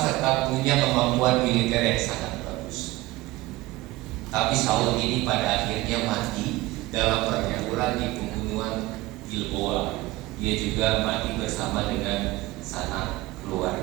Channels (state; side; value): quieter; left; 19.3 dB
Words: punya kemampuan militer yang sangat bagus. Tapi Saul ini pada akhirnya mati dalam pertempuran di pembunuhan Gilboa. Dia juga mati bersama dengan sanak